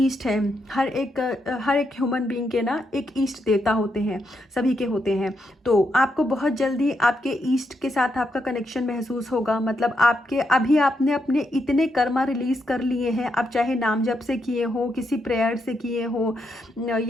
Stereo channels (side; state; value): both; normal; correlation 0.81